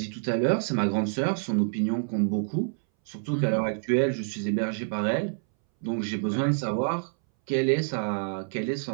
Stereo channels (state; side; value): silent; left; 60 dB below the other